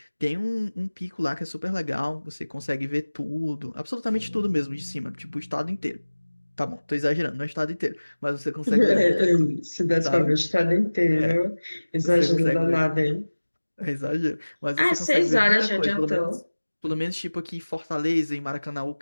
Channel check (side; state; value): both; inverted; correlation -1.00